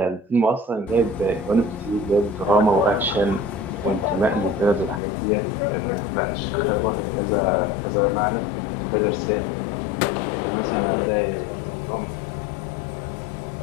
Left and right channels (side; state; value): right; drops out; at 5.0 s